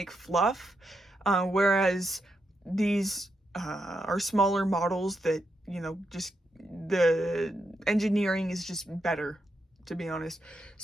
fluff, whereas these are smaller models that, you know, just the engineering is just better to be honest.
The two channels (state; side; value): normal; both; correlation 0.83